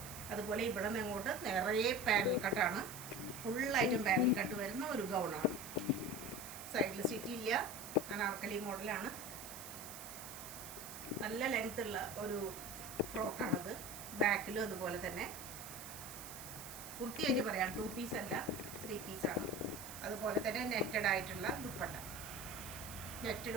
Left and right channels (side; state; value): right; noise; hiss, 11 dB below the sound